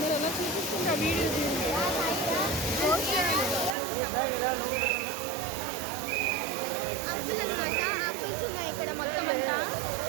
ఎలా చూపిస్తుంటే ఆ వీడియో ఆపిల్ అనమాట. ఆపిల్స్ ఉన్నాయి ఇక్కడ మొత్తం అంతా.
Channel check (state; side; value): drops out; left; at 3.8 s